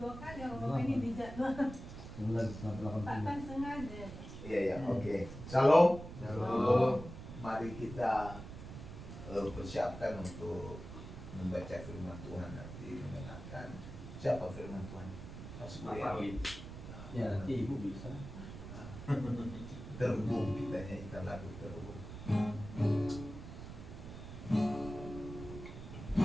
kali orang ini dijadwal. Pak kan sengaja. Iya, oke. Shalom. Shalom. Mari kita persiapkan untuk membaca firman Tuhan nanti, mendengarkan siapa firman Tuhan. Ya, nanti ibu bisa. Terhubung, kita nyanyikan lagu terhubung.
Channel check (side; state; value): right; noise; rumble, 11 dB below the sound